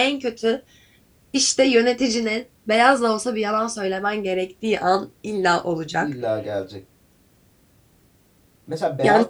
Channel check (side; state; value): both; identical; correlation 1.00